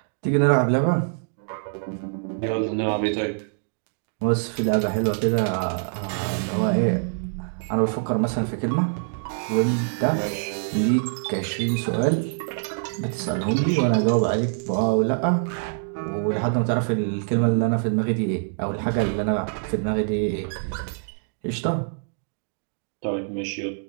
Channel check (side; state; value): left; silent; digital silence